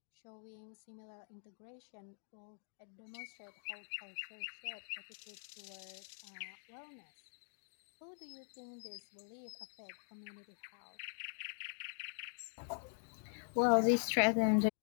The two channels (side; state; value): right; silent; digital silence